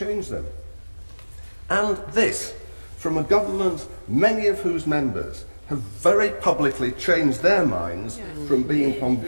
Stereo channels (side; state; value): both; inverted; correlation -1.00